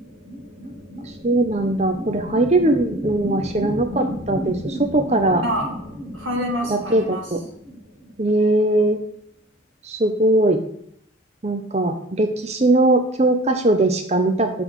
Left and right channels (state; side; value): normal; both; correlation 0.43